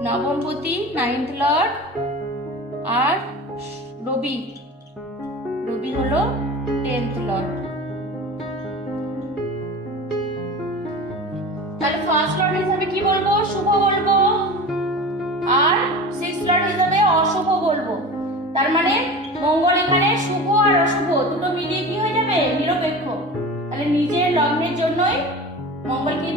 নবমপতি 9th লর্ড আর রবি হলো 10th লর্ড। তাহলে ফার্স্ট লর্ড হিসাবে কি বলবো? শুভ বলবো, আর 6th লর্ড হিসাবে অশুভ বলবো। তার মানে মঙ্গল এখানে শুভ আর অশুভ দুটো মিলিয়ে কি হয়ে যাবে? নিরপেক্ষ। তাহলে নিজের লগ্নের জন্যই মঙ্গল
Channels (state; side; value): normal; both; correlation 0.34